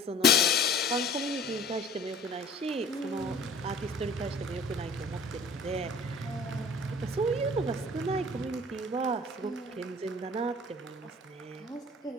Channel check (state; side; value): normal; both; correlation 0.47